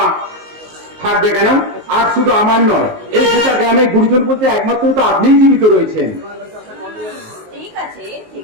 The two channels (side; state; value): left; late; 19 ms